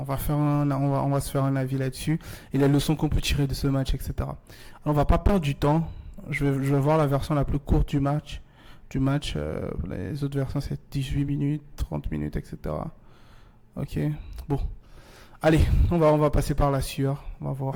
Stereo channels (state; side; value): identical; both; correlation 1.00